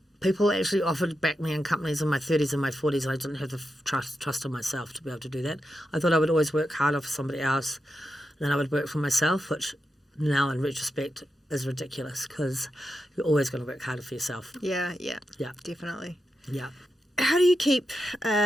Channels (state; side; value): normal; both; correlation 0.88